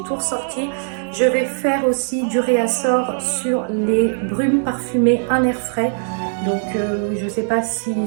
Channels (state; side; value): silent; left; digital silence